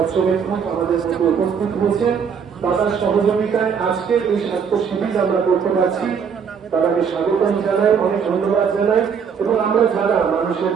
আমাদের মধ্যে উপস্থিত হয়েছেন। দাদার সহযোগিতায় আজকের এই স্বাস্থ্য শিবির আমরা করতে পারছি। তাদেরকে স্বাগতম জানাই, অনেক ধন্যবাদ জানাই। এবং আমরা যারা মানুষের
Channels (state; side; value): quieter; left; 6.7 dB